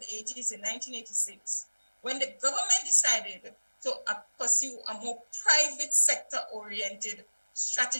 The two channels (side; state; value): both; inverted; correlation -1.00